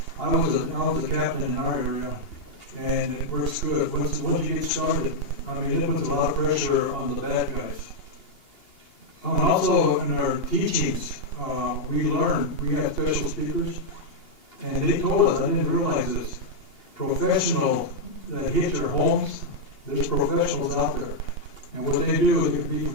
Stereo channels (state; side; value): late; right; 2.8 ms